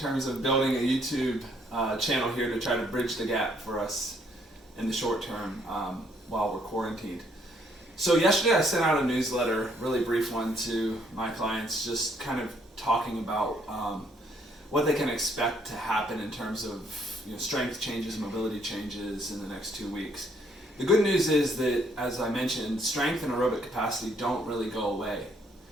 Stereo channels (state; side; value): normal; both; correlation 0.68